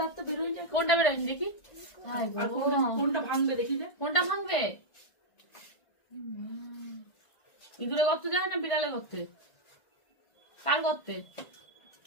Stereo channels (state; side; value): late; right; 1.5 ms